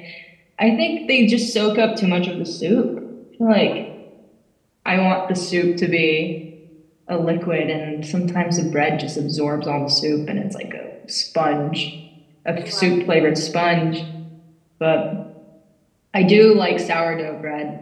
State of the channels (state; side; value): identical; both; correlation 1.00